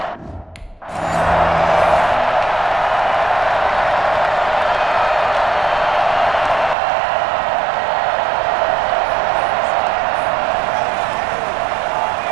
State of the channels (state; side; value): drops out; left; at 6.8 s